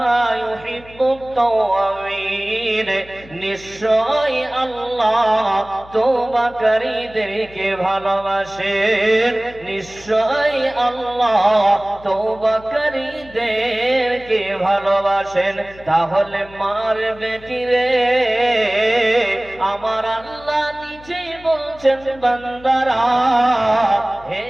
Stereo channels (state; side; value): noise; left; hum, 22 dB below the sound